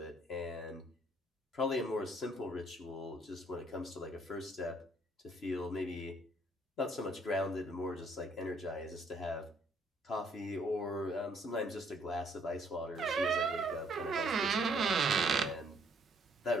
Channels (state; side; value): normal; both; correlation 0.65